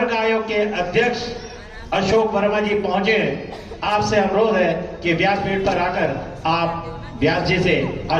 आयोग के अध्यक्ष अशोक वर्मा जी पहुंचे। आपसे अनुरोध है कि व्यासपीठ पर आकर आप व्यास जी से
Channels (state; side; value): identical; both; correlation 1.00